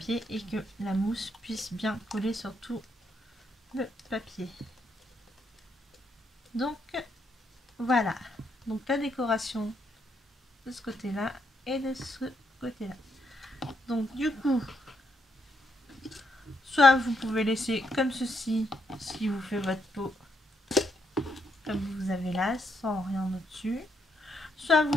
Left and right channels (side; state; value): both; normal; correlation 0.76